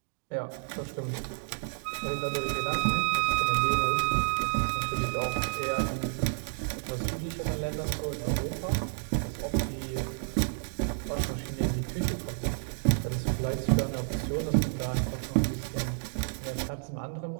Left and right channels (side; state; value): left; silent; digital silence